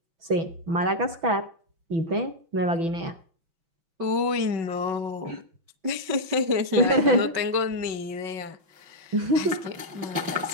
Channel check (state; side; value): late; left; 5.3 ms